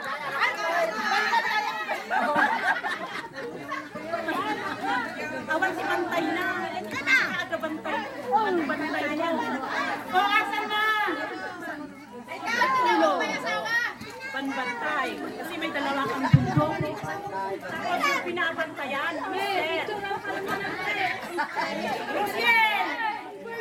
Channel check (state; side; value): identical; both; correlation 1.00